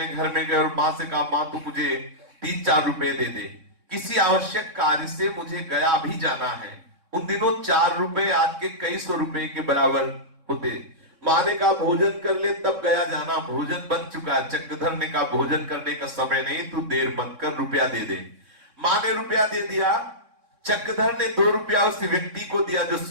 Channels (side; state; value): left; late; 3.6 ms